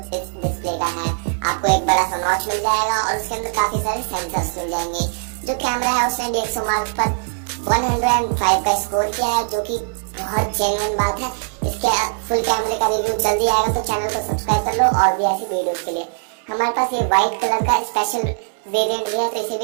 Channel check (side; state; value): left; silent; digital silence